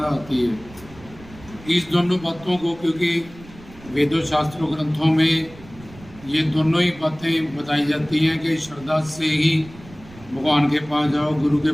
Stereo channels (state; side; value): noise; right; rumble, 20 dB below the sound